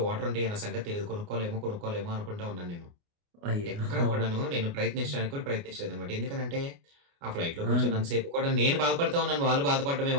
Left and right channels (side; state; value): left; late; 29 ms